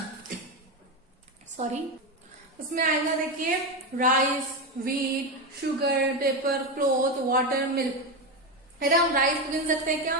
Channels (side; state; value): both; normal; correlation 0.14